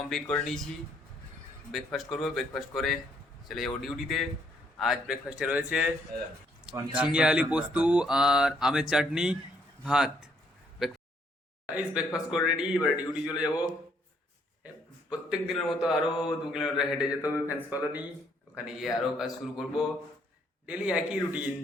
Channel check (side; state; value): both; normal; correlation 0.69